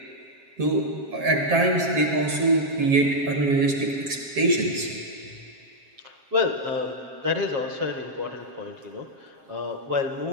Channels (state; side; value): late; left; 7.5 ms